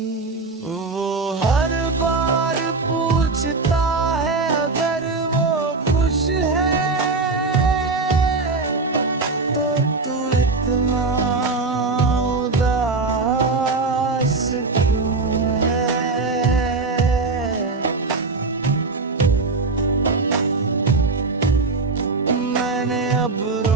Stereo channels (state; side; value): quieter; left; 3.8 dB